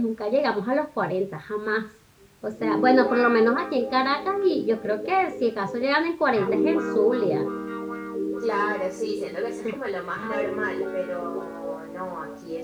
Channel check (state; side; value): identical; both; correlation 1.00